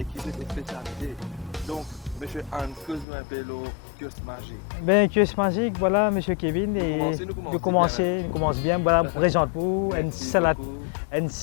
qui ont des spécialités. Donc, M. Hans, que nous un peu l'eau, kiosque magique. Ben, kiosque magique, voilà, M. Kevin. Nous commençons bien même. Nous commençons bien, voilà, je vous présente pour Merci beaucoup. une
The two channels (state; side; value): drops out; right; at 3.1 s